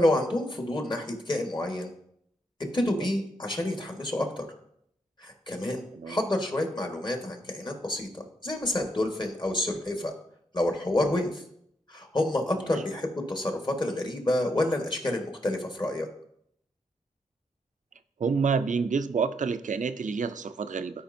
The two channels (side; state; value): both; normal; correlation 0.78